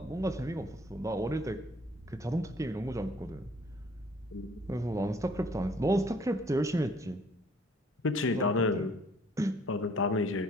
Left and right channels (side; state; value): both; normal; correlation 0.59